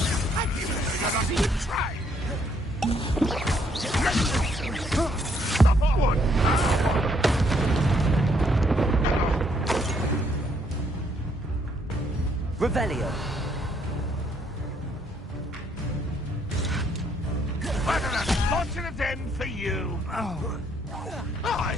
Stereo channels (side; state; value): both; normal; correlation 0.70